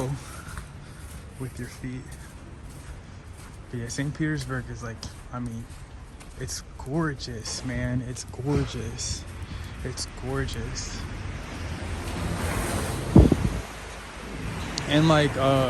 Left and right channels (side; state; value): both; identical; correlation 1.00